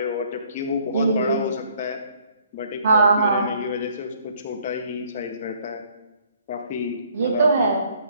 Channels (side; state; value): both; inverted; correlation -0.62